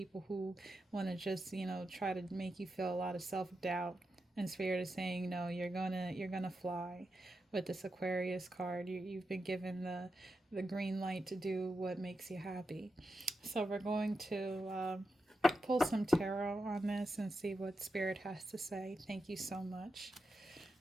who want to just, try to make you feel a lot of self-doubt. And Spirit is saying, no, you're gonna fly with this Aquarius card. You've been given the green light to do what makes you happy. So we're going to pull some tarot on this and see what Spirit has to say. Thank you so much.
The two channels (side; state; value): both; normal; correlation 0.88